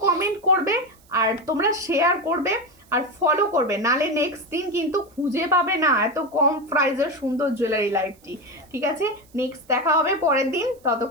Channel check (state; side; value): noise; right; hiss, 30 dB below the sound